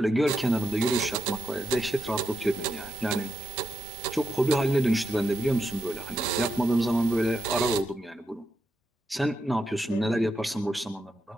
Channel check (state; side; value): normal; both; correlation 0.84